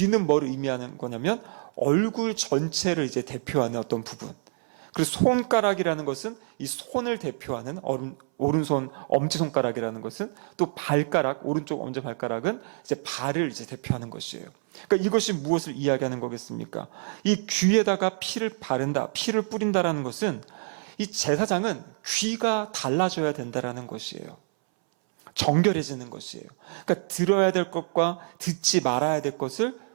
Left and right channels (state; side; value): silent; left; 60 dB below the other